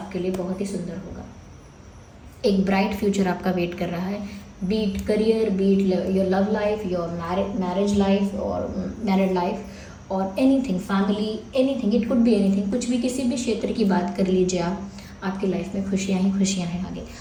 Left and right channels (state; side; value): identical; both; correlation 1.00